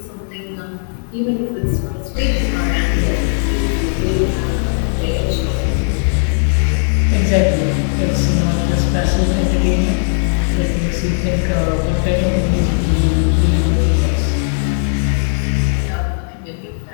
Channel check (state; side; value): silent; right; digital silence